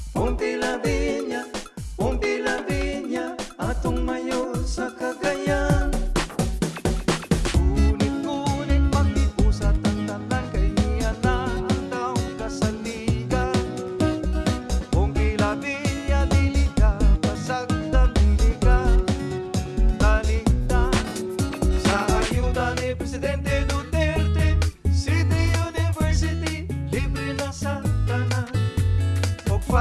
Pompi Lavinia, atong mayor sa Cagayan. Ngunit mag-iusat ang tanan, kay niya na ang taong kasaligan. Pompi Lavinia, dili ka pasagdan, dili ka talikdan. Sa ayuda ni Presidente Duterte, City University, libre na sa tanan. O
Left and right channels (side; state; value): both; identical; correlation 1.00